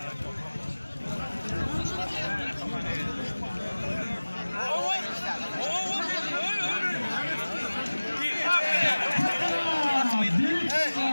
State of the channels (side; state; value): both; inverted; correlation -1.00